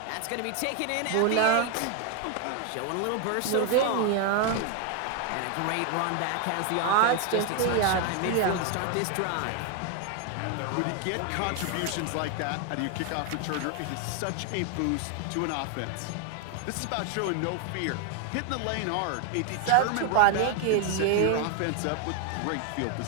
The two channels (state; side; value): different; both; correlation 0.01